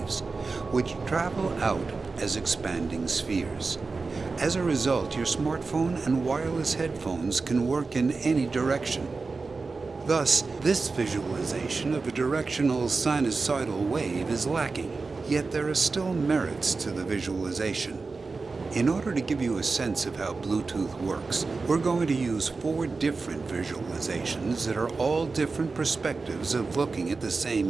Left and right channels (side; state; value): left; quieter; 4.1 dB